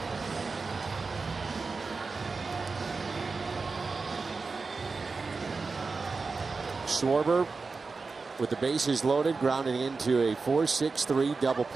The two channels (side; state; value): left; quieter; 4.3 dB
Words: Schwarber with the bases loaded, grounding into a 4-6-3 double